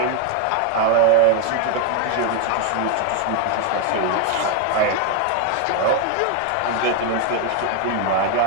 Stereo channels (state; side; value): different; both; correlation 0.01